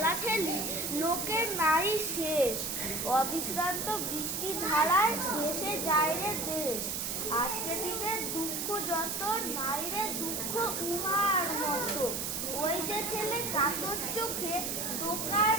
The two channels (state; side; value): noise; right; hiss, 2 dB below the sound